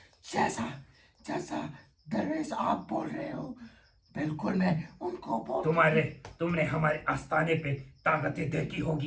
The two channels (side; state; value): both; identical; correlation 1.00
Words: जैसा जैसा दरवेश आप बोल रहे हो बिल्कुल मैं उनको बोल। तुमने हमारे आस्थाने पे ताकतें देखी